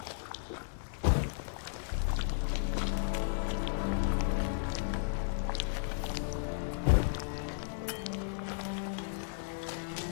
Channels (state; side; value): silent; right; digital silence